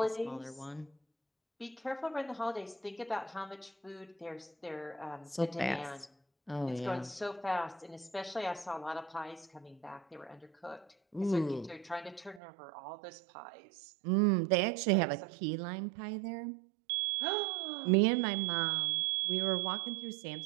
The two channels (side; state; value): left; drops out; at 12.4 s